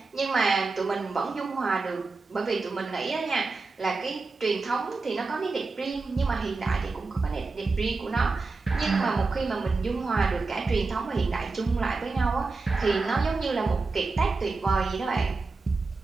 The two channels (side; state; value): left; quieter; 3.9 dB